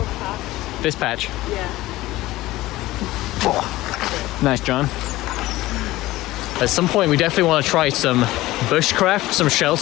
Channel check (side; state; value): right; quieter; 17.5 dB